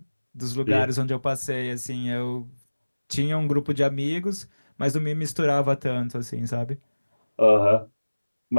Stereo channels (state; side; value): inverted; both; correlation -1.00